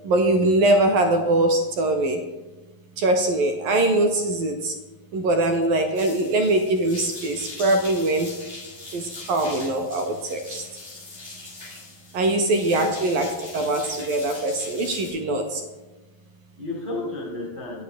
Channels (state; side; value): late; left; 11 ms